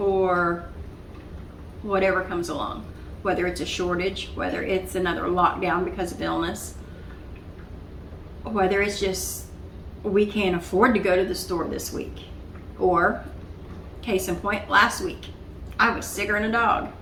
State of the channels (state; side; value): identical; both; correlation 1.00